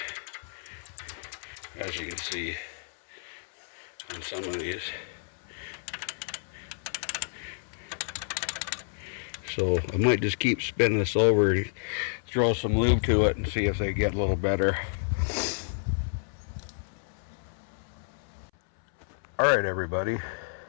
as you can see on some of these. So I might just keep spinning this over and throw some lube to it and see if they get a little better. Alright everybody,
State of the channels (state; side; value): silent; right; 58 dB below the other